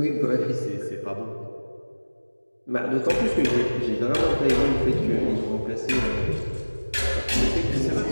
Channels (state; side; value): inverted; both; correlation -1.00